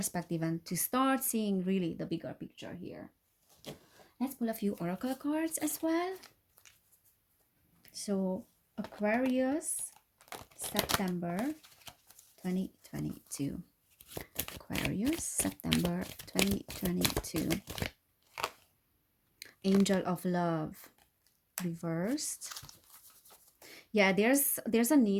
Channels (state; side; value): identical; both; correlation 1.00